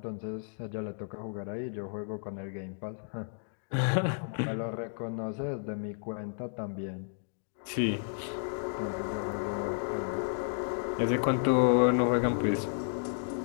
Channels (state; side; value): silent; right; digital silence